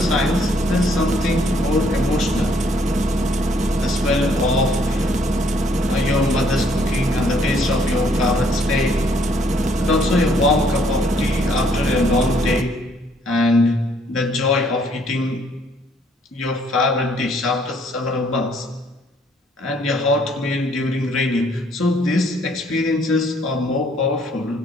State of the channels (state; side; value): normal; both; correlation 0.66